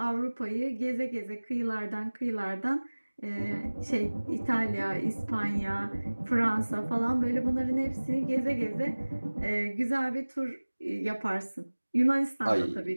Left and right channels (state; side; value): inverted; both; correlation -1.00